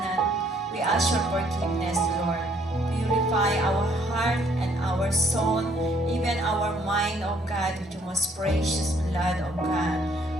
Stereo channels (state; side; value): normal; both; correlation 0.65